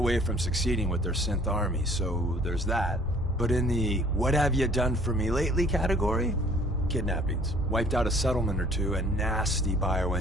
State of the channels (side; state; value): both; normal; correlation 0.55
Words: from succeeding with their synth army, so there's that. But in the "what have you done for me lately" category, kidnappings, wiped out a settlement or two, and nasty